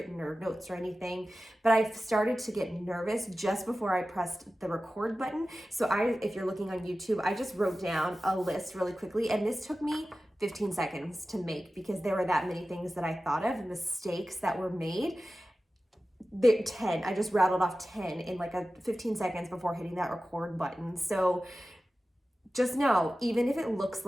or notes or anything, but I've started to get nervous just before I pressed the record button. So if you're looking on YouTube, I just wrote down a list really quickly, and this took me 15 seconds to make because there were that many things that I thought of, mistakes that were made. 10, I just rattled off 10 in like 15 seconds before hitting that record button. So just know, even if it looks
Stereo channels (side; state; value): both; normal; correlation 0.95